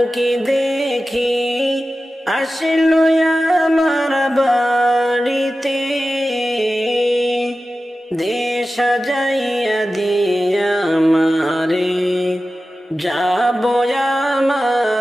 দেখি আসলো আমার বাড়িতে, দেশ সাজাইয়া দিয়া আমারে যাব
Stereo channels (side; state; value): both; normal; correlation 0.94